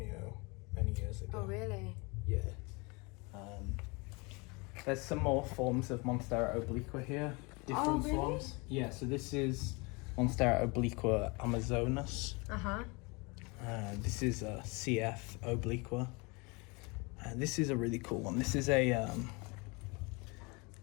many years ago. Oh, really? Yeah. There's some more forms of Monstera obliqua here. Different forms. Yeah, so this is Monstera obliqua amazonas. This is a CF obliqua. This is a really cool one. This is a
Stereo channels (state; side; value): quieter; right; 28.3 dB